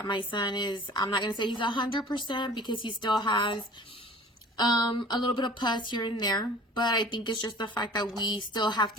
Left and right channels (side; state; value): both; normal; correlation 0.45